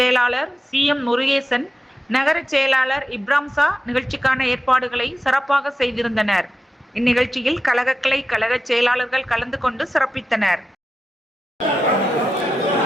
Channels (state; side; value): normal; both; correlation 0.91